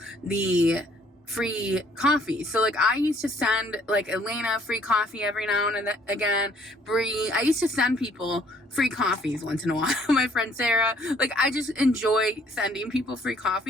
the free coffee. So like I used to send like Elena free coffee every now and again, Bree. I used to send people free coffees once in a while. My friend Sarah. Like I just enjoy sending people free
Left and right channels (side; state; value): both; normal; correlation 0.61